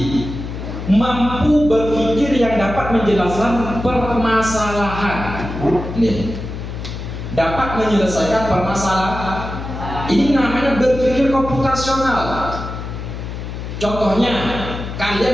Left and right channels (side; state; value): left; noise; hum, 8 dB below the sound